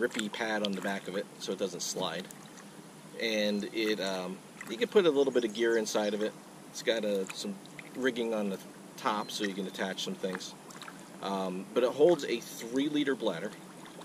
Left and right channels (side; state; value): both; identical; correlation 1.00